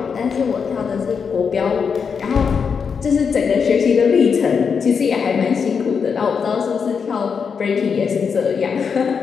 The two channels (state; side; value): quieter; right; 6.1 dB